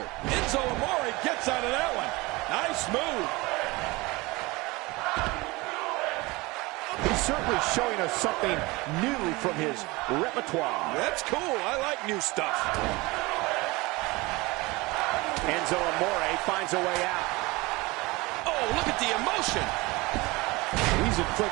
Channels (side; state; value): left; quieter; 23.0 dB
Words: Enzo Amore gets out of that one. Nice move. He's certainly showing us something new from his repertoire. That's cool. I like new stuff. Enzo Amore finds a way out. Oh, look at the emotion. He's